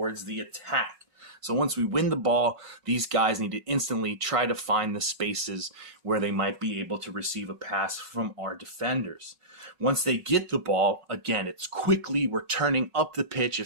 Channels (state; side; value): late; left; 5.4 ms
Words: the attack. So once we win the ball, these guys need to instantly try to find the spaces where they might be able to receive a pass from our defenders. Once they get the ball, again, it's quickly, we're turning up the pitch.